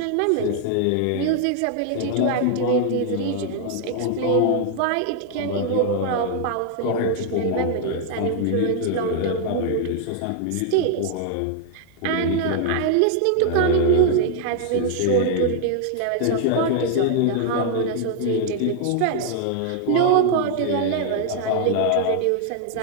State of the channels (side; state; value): both; different; correlation 0.00